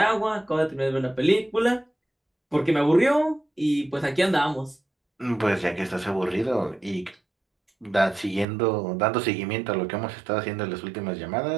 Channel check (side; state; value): left; drops out; at 8.5 s